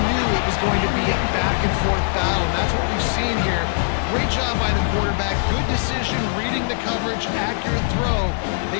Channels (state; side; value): silent; right; 65 dB below the other